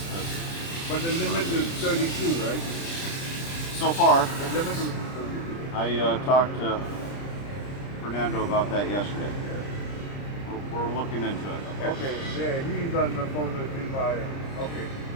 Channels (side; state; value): right; late; 30 ms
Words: but the limit is 32, right? So far. The limit is 32. I talked to Fernando about that yesterday. We're looking into it. Okay, yeah, he's on the phone with me by. Okay,